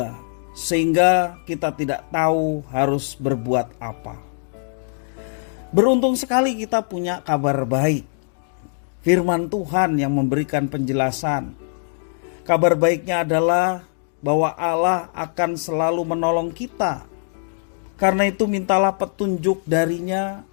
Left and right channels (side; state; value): right; silent; digital silence